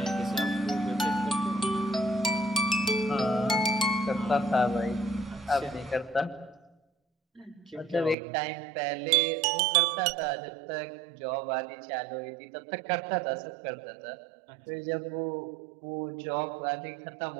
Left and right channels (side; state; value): left; drops out; at 8.2 s